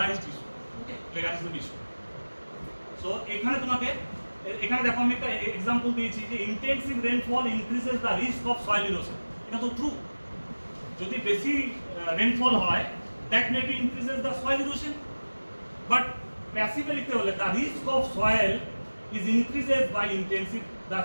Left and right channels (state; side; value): inverted; both; correlation -1.00